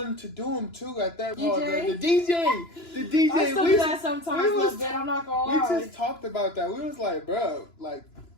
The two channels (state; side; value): late; right; 2.9 ms